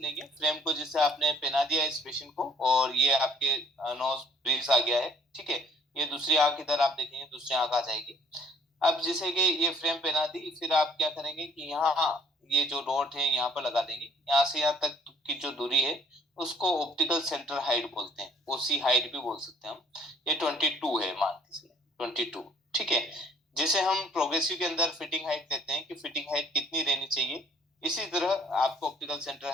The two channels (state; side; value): normal; both; correlation 0.59